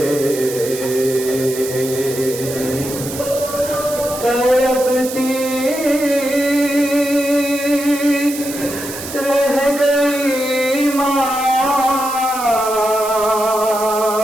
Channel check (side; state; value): right; noise; hiss, 10 dB below the sound